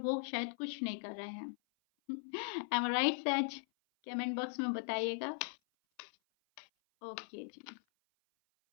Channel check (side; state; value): right; silent; 52 dB below the other